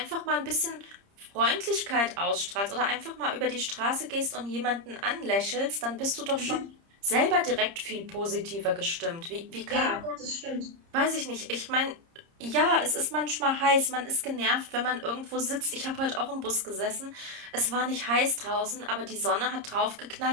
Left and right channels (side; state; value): left; late; 30 ms